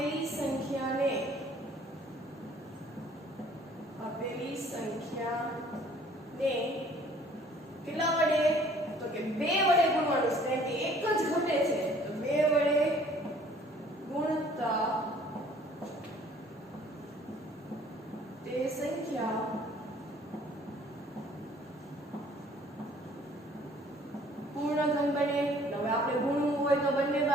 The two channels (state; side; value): normal; both; correlation 0.56